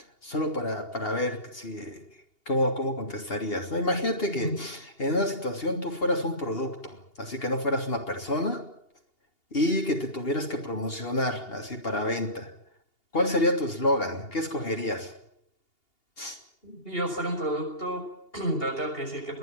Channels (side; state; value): right; late; 2.8 ms